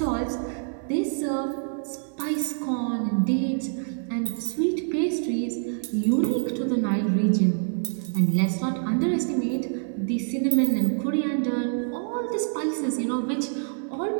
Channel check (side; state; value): left; silent; digital silence